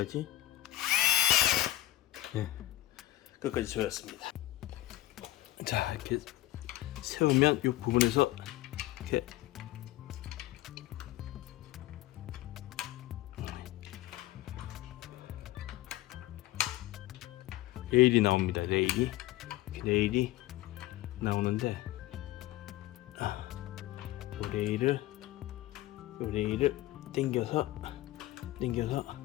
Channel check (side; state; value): right; quieter; 15.9 dB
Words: 네, 끝까지 조였습니다. 자, 이렇게 세우면 이 부분에서 이렇게 레일이 나옵니다. 레일이 나오는데 이 레일을 당겨서